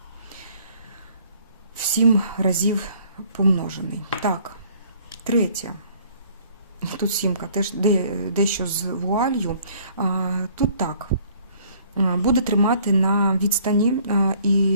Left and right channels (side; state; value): both; inverted; correlation -0.58